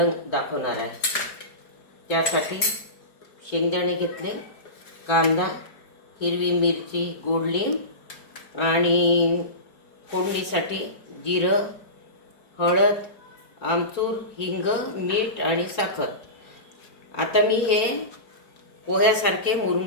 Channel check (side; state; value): right; late; 4.7 ms